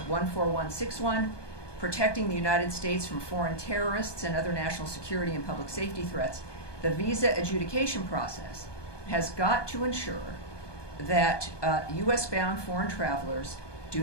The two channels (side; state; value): right; late; 1.2 ms